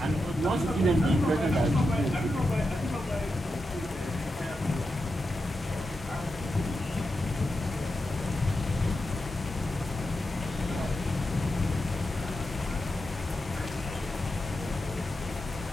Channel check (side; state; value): both; normal; correlation 0.88